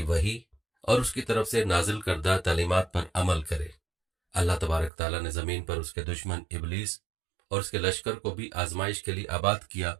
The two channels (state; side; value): drops out; left; at 4.9 s